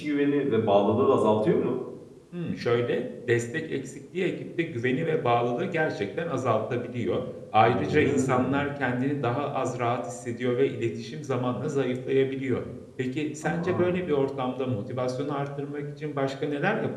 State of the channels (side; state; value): both; identical; correlation 1.00